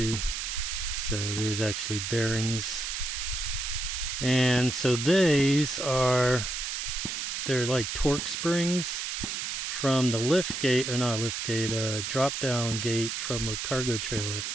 So there's actually bearings, and so these are, they're like torque springs from the lift gate, or not lift gate, drop down gate from a cargo trailer.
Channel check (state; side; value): noise; right; hiss, 3 dB below the sound